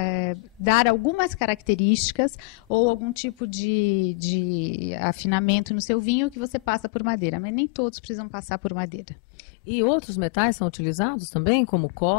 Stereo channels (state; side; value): drops out; right; at 6.9 s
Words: dar algumas características ou algum tipo de afinamento no seu vinho que você passa por madeira, mas nem todos precisam passar por madeira. E outros metais são utilizados também, como